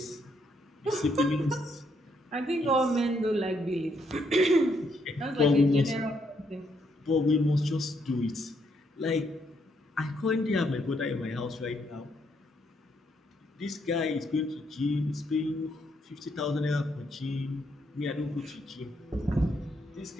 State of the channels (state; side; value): normal; both; correlation 0.74